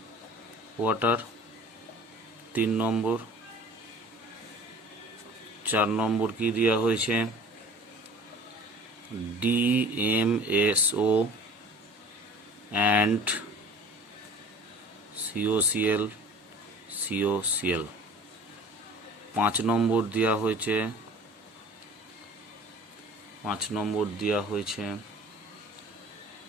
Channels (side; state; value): both; normal; correlation 0.44